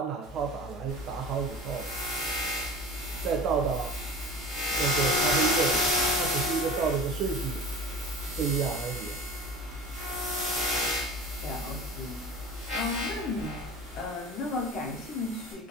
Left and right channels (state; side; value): normal; both; correlation 0.37